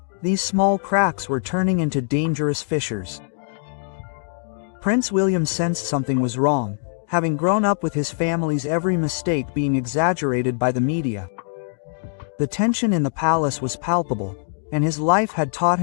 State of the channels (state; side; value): silent; right; digital silence